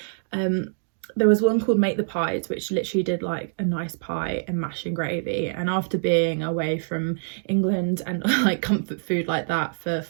there was one called Make the Pies, which literally did like a nice pie and mash and gravy. And after being away from England and like comfort food like that for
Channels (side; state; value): left; silent; digital silence